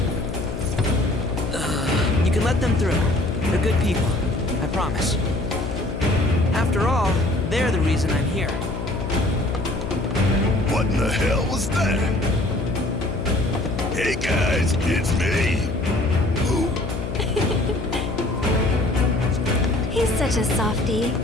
You can let them through. They're good people. I promise. After all, they're the reason I'm here. What in the hell was that? Hey guys, it's me! Who? He's such a softie.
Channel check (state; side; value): noise; left; hum, 5 dB below the sound